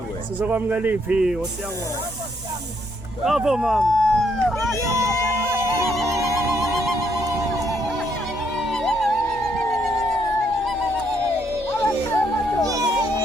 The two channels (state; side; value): normal; both; correlation 0.73